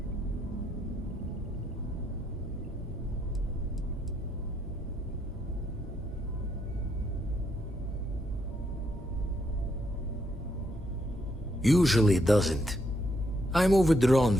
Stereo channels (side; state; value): both; normal; correlation 0.76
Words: Usually it doesn't. I'm overdrawn